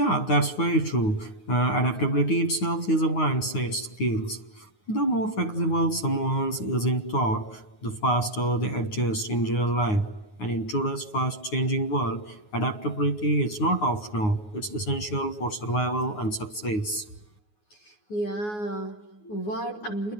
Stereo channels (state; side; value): late; right; 9.5 ms